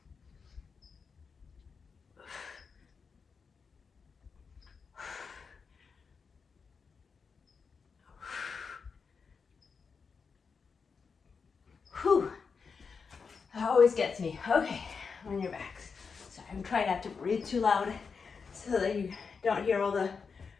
always gets me. Okay, on your backs. Sorry, I'm trying not to breathe too loud so that you don't hear all the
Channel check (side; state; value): right; quieter; 5.4 dB